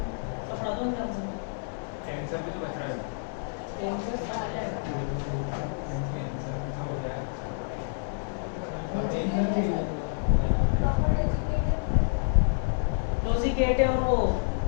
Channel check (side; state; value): right; silent; digital silence